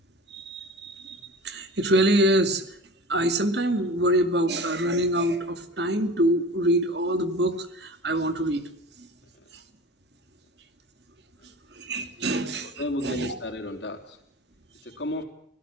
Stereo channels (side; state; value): both; normal; correlation 0.37